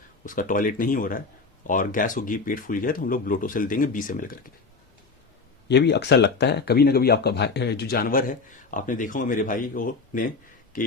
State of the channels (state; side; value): quieter; right; 4.3 dB